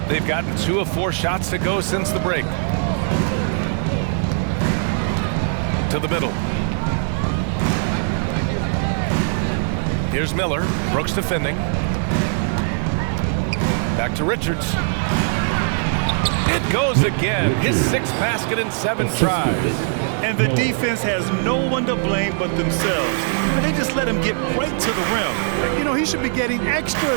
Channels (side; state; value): left; silent; digital silence